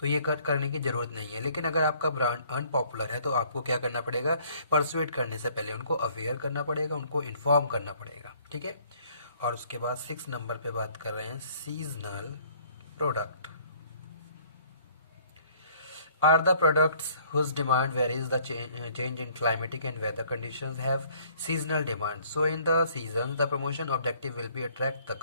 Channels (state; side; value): inverted; both; correlation -0.59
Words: ये करने की ज़रूरत नहीं है। लेकिन अगर आपका ब्रांड अनपॉपुलर है तो आपको क्या करना पड़ेगा, परसुएट करने से पहले उनको अवेयर करना पड़ेगा, उनको इन्फॉर्म करना पड़ेगा, ठीक है। और उसके बाद 6 नंबर पे बात कर रहे हैं seasonal product. Are the products whose demand varies the change in climatic and weather conditions have seasonal demand. So in the seasons, the promotion objective will be attract the